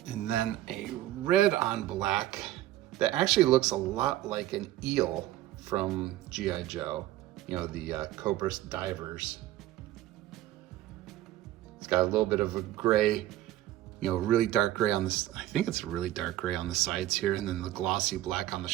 And then a red on black that actually looks a lot like an eel from G.I. Joe. You know, the Cobra divers. It's got a little bit of a gray, you know, really dark gray on this. I think it's a really dark gray on the sides here, and then the glossy black on the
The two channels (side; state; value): left; quieter; 14.5 dB